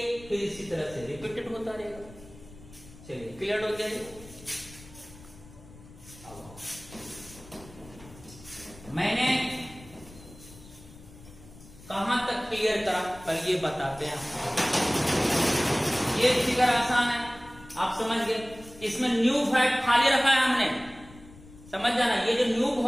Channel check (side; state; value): left; noise; rumble, 20 dB below the sound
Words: फिर इसी तरह से रिपीटेड होता रहेगा। चलिए क्लियर हो गया। मैंने कहां तक क्लियर करा पहले ये बताते हैं। ये फिगर आसान है, आप समझ गए। इसमें न्यू वॉइड खाली रखा है हमने, समझ जाना। ये जो न्यू